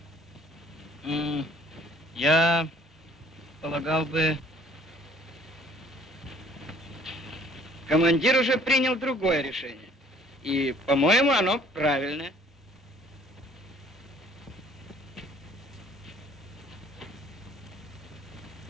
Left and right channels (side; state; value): both; normal; correlation 0.56